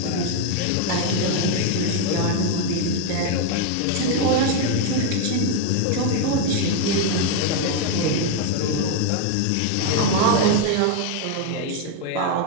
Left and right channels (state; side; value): different; both; correlation 0.01